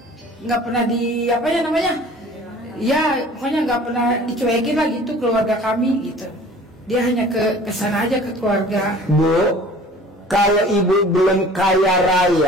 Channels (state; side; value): normal; both; correlation 0.47